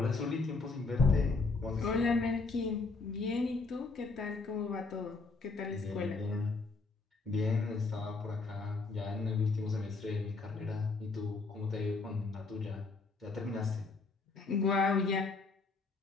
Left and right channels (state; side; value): quieter; right; 3.9 dB